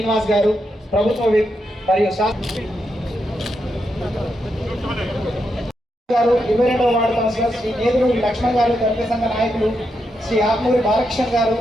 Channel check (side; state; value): both; normal; correlation 0.83